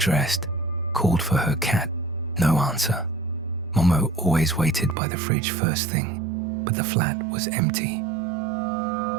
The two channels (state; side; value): drops out; left; at 5.0 s